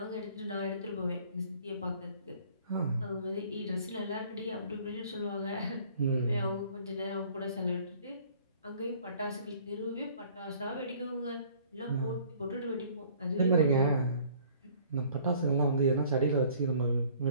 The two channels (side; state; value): both; inverted; correlation -0.55